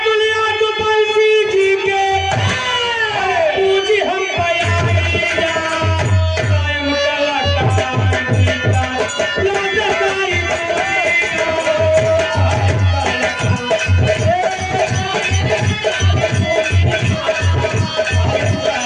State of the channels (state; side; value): identical; both; correlation 1.00